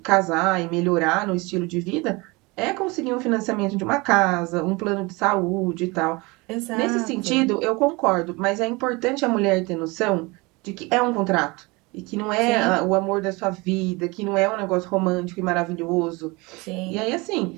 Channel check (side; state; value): left; quieter; 25.2 dB